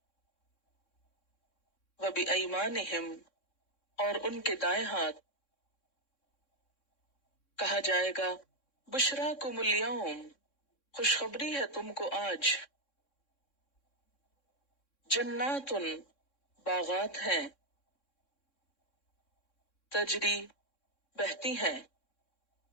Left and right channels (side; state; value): right; late; 3.6 ms